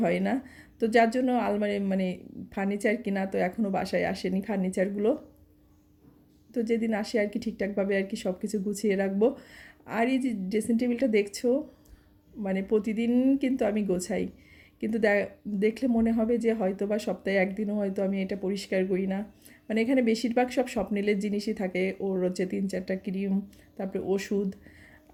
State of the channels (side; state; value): both; identical; correlation 1.00